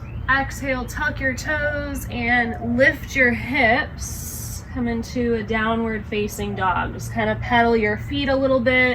Exhale, tuck your toes and lift your hips. Come into a downward facing dog. Just kind of pedal your feet a little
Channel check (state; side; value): identical; both; correlation 1.00